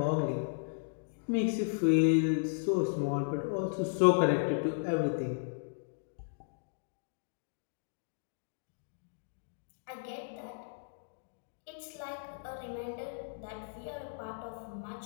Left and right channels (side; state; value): right; silent; digital silence